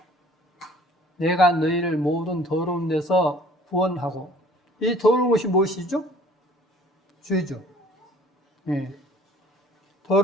내가 너희를 모든 더러운 데서 구원하고. 이 더러운 것이 무엇이죠? 죄죠.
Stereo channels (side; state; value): both; normal; correlation 0.53